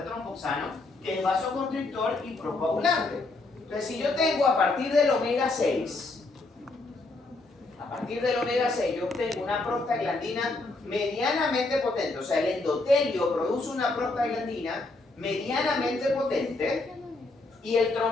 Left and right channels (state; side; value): quieter; right; 3.2 dB